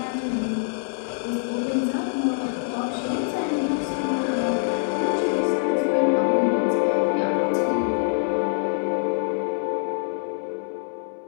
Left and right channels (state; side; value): silent; right; digital silence